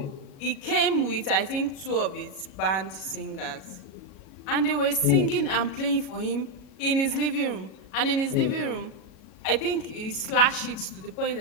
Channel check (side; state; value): right; late; 37 ms